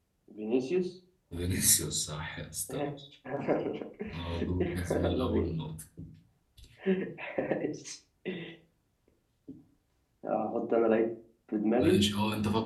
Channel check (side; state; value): both; identical; correlation 1.00